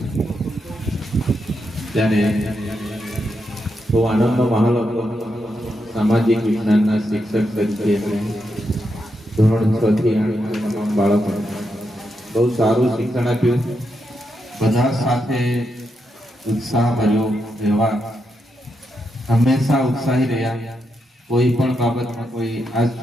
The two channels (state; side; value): normal; both; correlation 0.84